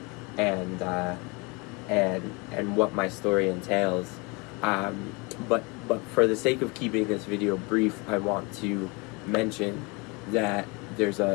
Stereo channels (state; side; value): quieter; right; 28.3 dB